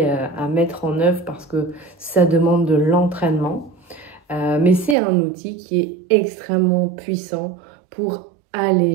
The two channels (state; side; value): drops out; left; at 5.0 s